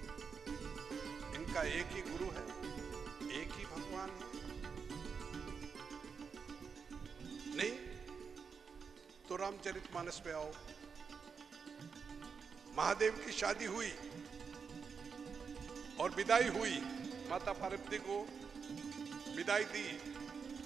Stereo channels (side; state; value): left; quieter; 5.8 dB